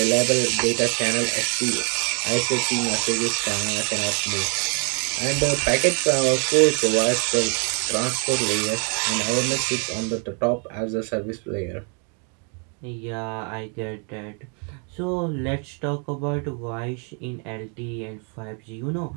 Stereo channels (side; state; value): left; quieter; 38.7 dB